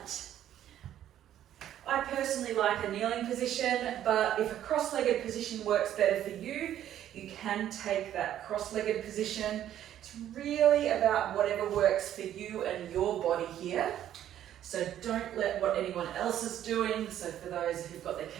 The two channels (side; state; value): left; quieter; 11.4 dB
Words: I personally like a kneeling position, but if a cross-legged position works better for you, you can take that cross-legged position. It's really about whatever works for you and your body here. So don't let what anyone else is doing, so for those who've got their